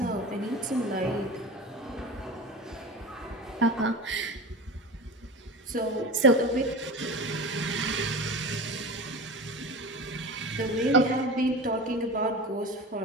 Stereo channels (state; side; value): normal; both; correlation 0.31